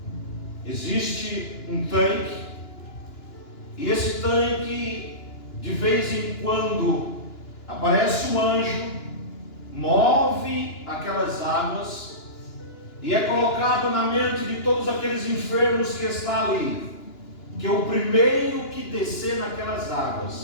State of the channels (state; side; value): late; right; 2.9 ms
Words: existe um tanque, e esse tanque, de vez em quando, aparece um anjo, move aquelas águas, e é colocado na mente de todos aqueles enfermos que está ali, que o primeiro que descer naquelas